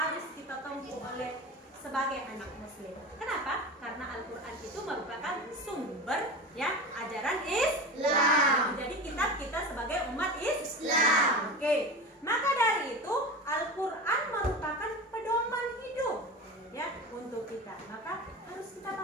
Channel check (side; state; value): both; normal; correlation 0.28